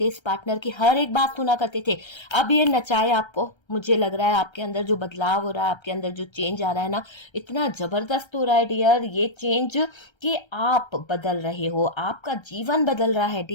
इस पार्टनर की हर एक बात सुना करते थे। अब ये नचाए आपको, मुझे लग रहा है आपके अंदर जो बदलाव हो रहा है, आपके अंदर जो चेंज आ रहा है ना, इतना जबरदस्त हो रहा है डियर ये चेंज कि आप बदल रहे हो, आपका जीवन बदल रहा है।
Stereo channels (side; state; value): right; late; 1.3 ms